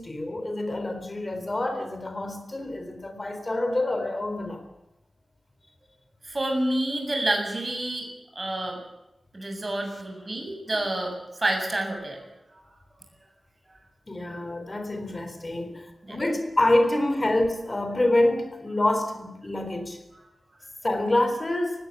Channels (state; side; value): normal; both; correlation 0.96